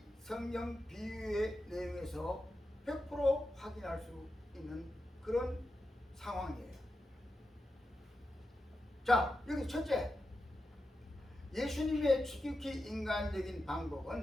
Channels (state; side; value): normal; both; correlation 0.89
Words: 성경 비유의 내용에서 100% 확인할 수 있는 그런 상황이에요. 자, 여기 첫째, 예수님의 지극히 인간적인